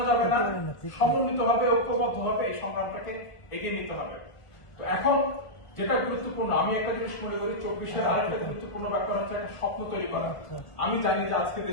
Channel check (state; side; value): late; right; 1.5 ms